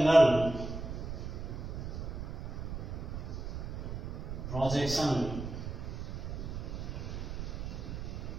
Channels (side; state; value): right; noise; rumble, 6 dB below the sound